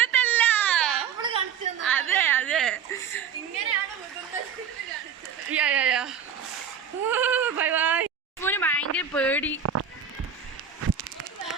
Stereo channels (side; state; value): left; quieter; 7.6 dB